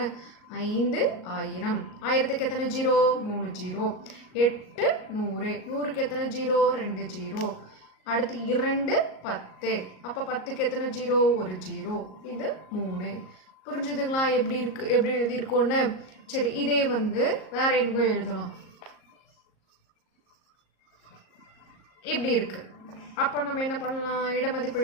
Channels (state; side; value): late; right; 38 ms